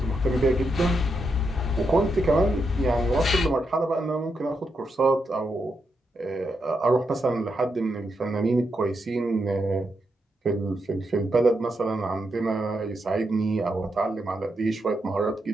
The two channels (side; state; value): both; normal; correlation 0.83